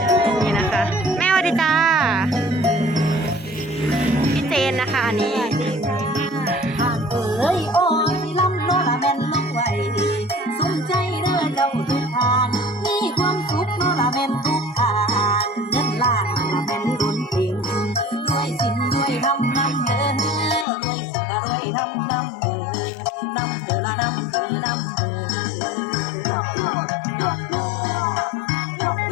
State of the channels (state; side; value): drops out; right; at 20.7 s